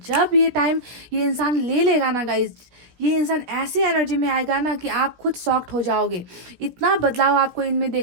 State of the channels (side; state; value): left; late; 16 ms